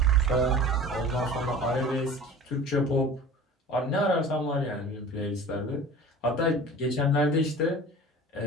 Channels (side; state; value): both; normal; correlation 0.40